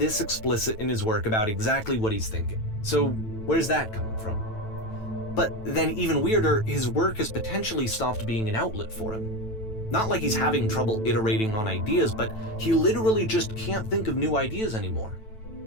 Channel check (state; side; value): late; right; 9.1 ms